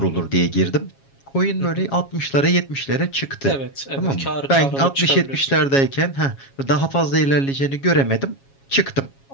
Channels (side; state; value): right; late; 7.3 ms